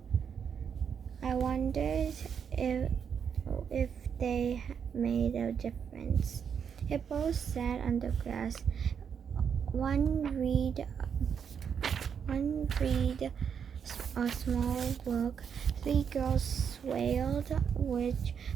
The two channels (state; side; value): quieter; left; 7.3 dB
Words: I wondered if they made a difference. Hippos sat on the grass. One read a small book. 3 girls wailed, which